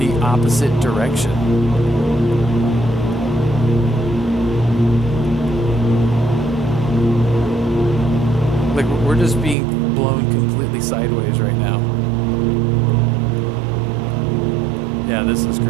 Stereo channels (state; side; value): drops out; left; at 9.6 s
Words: opposite direction. Like we're just being blown completely sideways right now. Yeah, this is